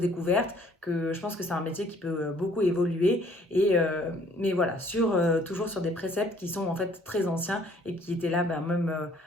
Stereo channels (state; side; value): normal; both; correlation 0.59